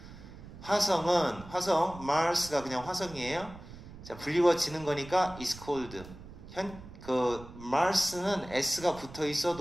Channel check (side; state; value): right; noise; rumble, 16 dB below the sound